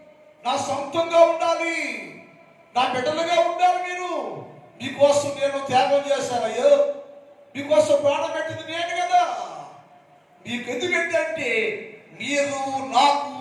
నా సొంతంగా ఉండాలి, నా బిడ్డలుగా ఉండాలి. మీరు మీకోసం నేను త్యాగం చేశానయ్యో, మీకోసం ప్రాణం పెట్టింది నేను కదా. మీకు ఎందుకంటే మీరు నాకు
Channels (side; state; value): both; identical; correlation 1.00